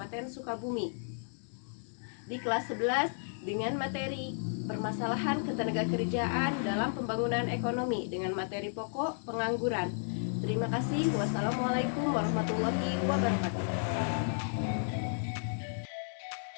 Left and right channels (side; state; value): right; silent; 56 dB below the other